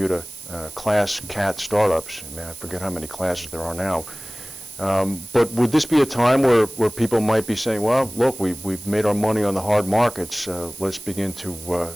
class cat startups, I forget how many classes there are now, but would this be a time where people might be saying, well, look, we've made our money on the hard markets, let's begin to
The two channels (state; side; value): noise; right; hiss, 14 dB below the sound